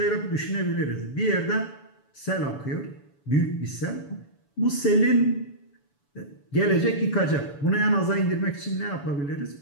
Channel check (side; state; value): right; late; 7.0 ms